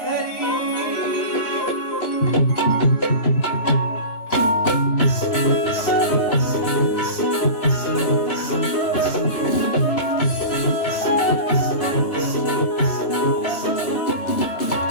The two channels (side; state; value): right; late; 2.9 ms